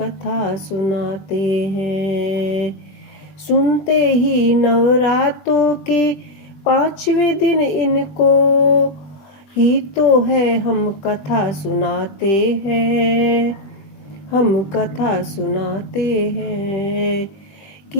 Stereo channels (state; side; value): late; right; 20 ms